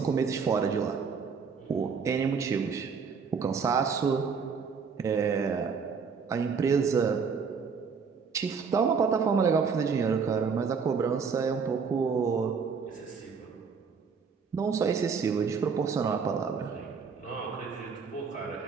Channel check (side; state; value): left; quieter; 5.7 dB